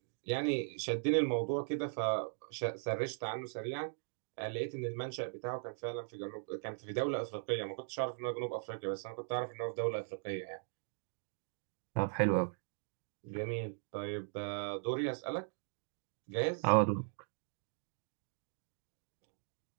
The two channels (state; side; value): silent; left; digital silence